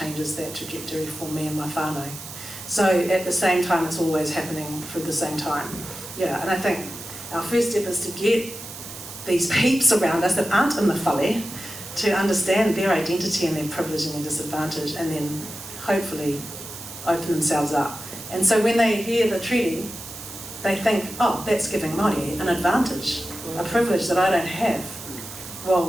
that trajectory for me and my whānau. So at the same time, it's always happening through the same time. Yeah, and I think our first step is to get these peeps around us that aren't in the whale to understand their identity and their privilege and their disadvantage, and then hopefully open themselves up. And so when they hear the treaty, they think, oh, that's giving Māori an advantage, a privilege that I don't have.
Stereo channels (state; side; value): noise; right; hiss, 12 dB below the sound